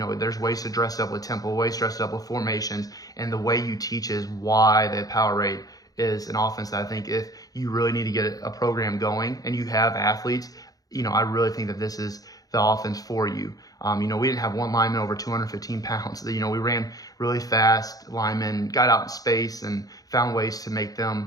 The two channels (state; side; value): late; right; 0.18 ms